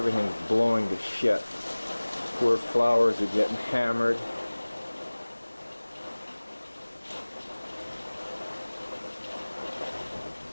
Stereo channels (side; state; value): both; inverted; correlation -1.00